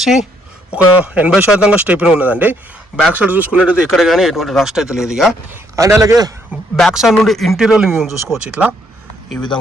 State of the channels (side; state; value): both; normal; correlation 0.70